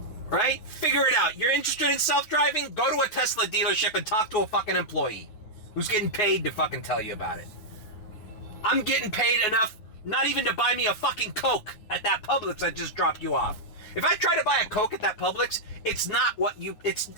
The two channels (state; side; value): late; right; 9.4 ms